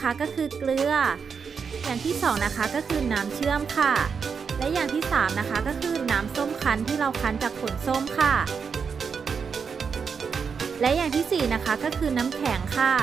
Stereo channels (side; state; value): left; quieter; 6.0 dB